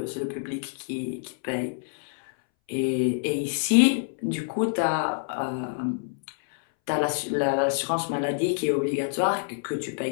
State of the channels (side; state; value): right; silent; 60 dB below the other